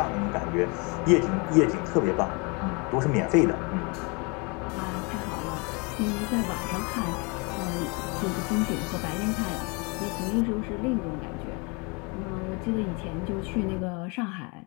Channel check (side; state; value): right; quieter; 30.7 dB